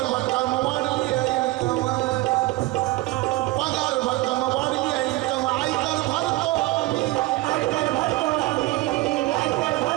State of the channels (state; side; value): quieter; left; 19.7 dB